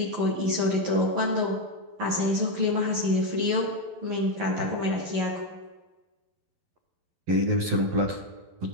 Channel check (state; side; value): late; left; 11 ms